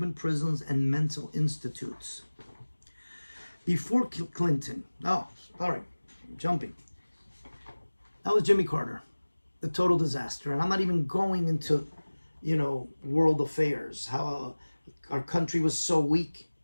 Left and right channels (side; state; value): both; inverted; correlation -1.00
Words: prisons and mental institutes. Before Clinton, jumping. That was Jimmy Carter, the total disaster. And I'm not even going into, world affairs, how our country was so weak